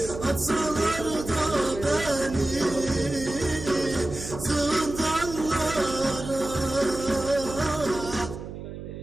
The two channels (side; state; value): right; noise; hum, 10 dB below the sound